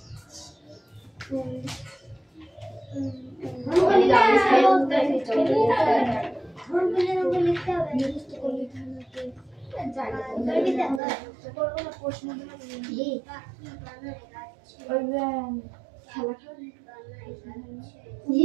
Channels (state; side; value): drops out; left; at 11.0 s